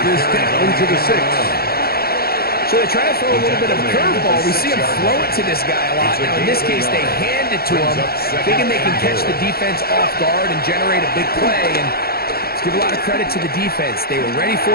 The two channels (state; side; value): late; right; 0.45 ms